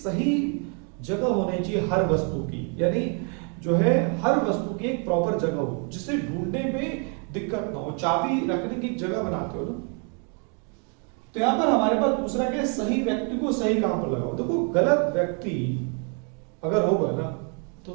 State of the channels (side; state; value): left; quieter; 38.8 dB